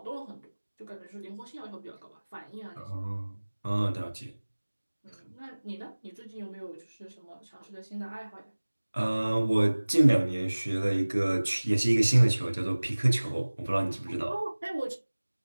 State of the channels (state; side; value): inverted; both; correlation -1.00